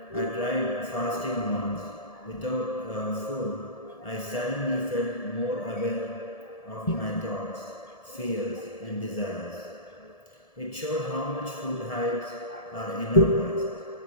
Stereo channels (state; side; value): late; right; 1.7 ms